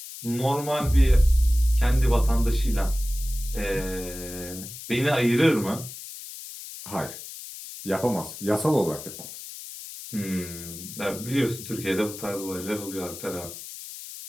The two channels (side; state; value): left; noise; hiss, 12 dB below the sound